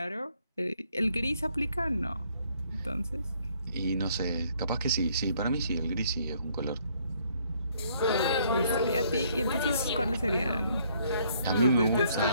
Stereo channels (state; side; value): inverted; both; correlation -0.66